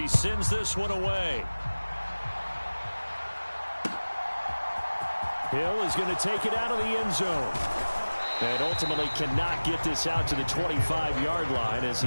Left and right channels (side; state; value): both; inverted; correlation -1.00